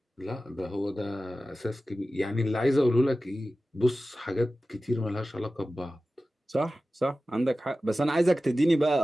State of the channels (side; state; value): both; normal; correlation 0.95